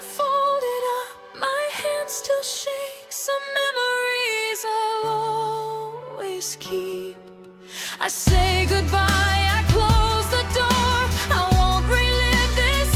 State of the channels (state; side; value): identical; both; correlation 1.00